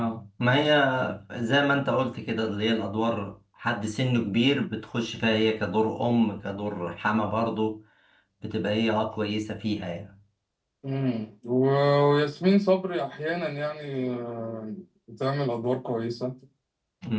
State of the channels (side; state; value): both; identical; correlation 1.00